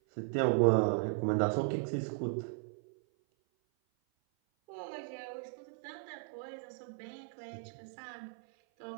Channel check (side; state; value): left; silent; 54 dB below the other